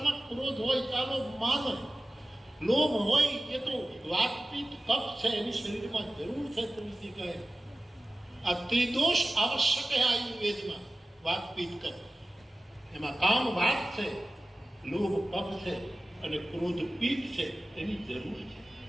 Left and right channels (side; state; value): both; normal; correlation 0.96